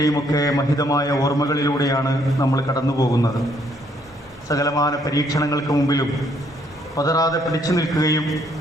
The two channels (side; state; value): both; normal; correlation 0.68